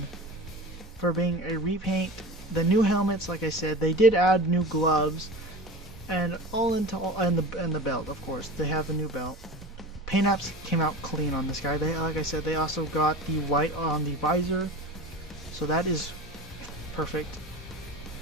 for being a repaint. The new helmets, like I said, they did add new gloves, and and the belt, of course. They have a new belt. Paint apps came out clean on this guy. They, like I said, they also got the white on the visor, so that is perfect.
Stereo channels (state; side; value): normal; both; correlation 0.34